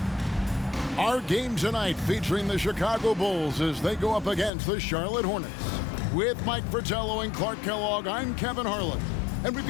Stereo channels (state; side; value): drops out; right; at 4.5 s